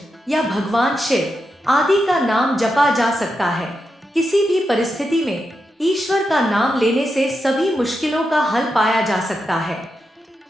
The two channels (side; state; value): both; normal; correlation 0.87